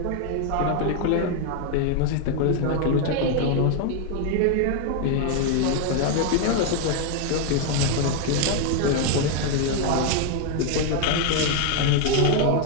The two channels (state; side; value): different; both; correlation 0.01